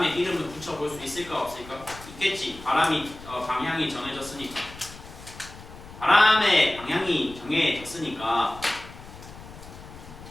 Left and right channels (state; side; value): noise; left; rumble, 17 dB below the sound